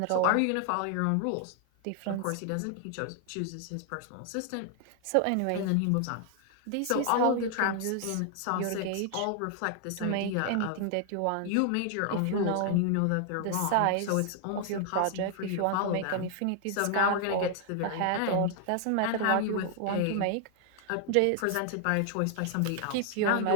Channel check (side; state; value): both; different; correlation 0.00